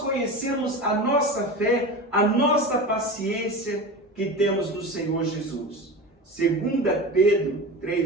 a nossa fé, a nossa paciência que temos no Senhor Jesus. 2 Pedro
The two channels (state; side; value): normal; both; correlation 0.28